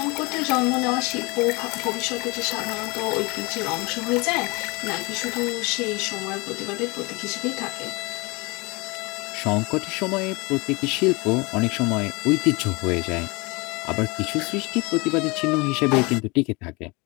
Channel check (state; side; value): quieter; right; 26.9 dB